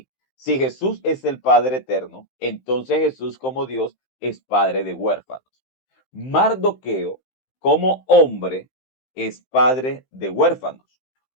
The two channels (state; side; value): late; right; 15 ms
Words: si Jesús es el Padre eterno, entonces Jesús como Dios es Padre de huérfanos. Mardoqueo como hombre es padre de huérfanos.